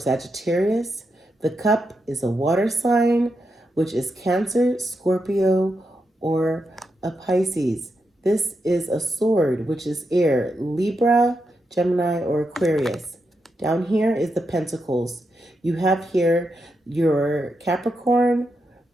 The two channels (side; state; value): both; normal; correlation 0.84